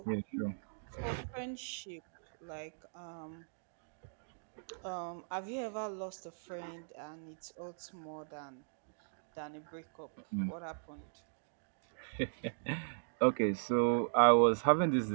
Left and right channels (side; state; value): left; silent; digital silence